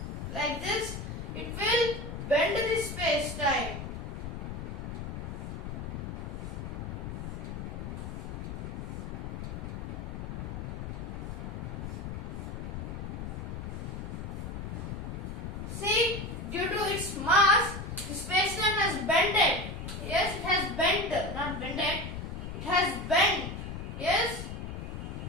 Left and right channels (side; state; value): left; noise; rumble, 6 dB below the sound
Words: Like this, it will bend the space-time. See, due to its mass, the space-time has bended. Yes, it has bent, not bended. It has bent. Yes.